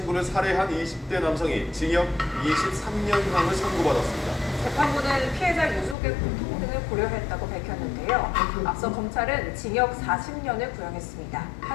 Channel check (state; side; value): drops out; right; at 6.0 s